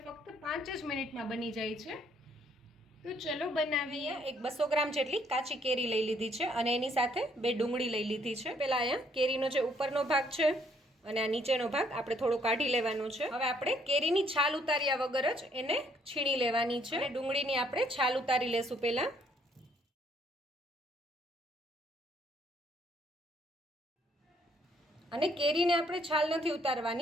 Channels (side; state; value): both; normal; correlation 0.67